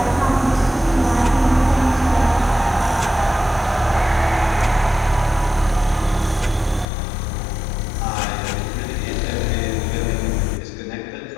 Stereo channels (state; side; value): drops out; right; at 6.9 s